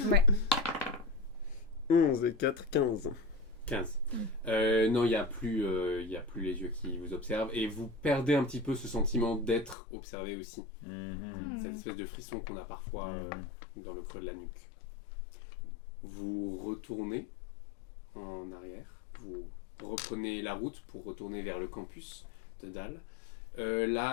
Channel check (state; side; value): drops out; right; at 9.8 s